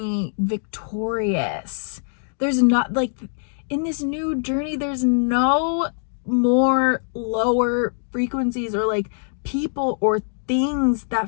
victorious. There's not like in this new journey, there's no more lower frequencies or like people or things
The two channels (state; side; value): silent; right; digital silence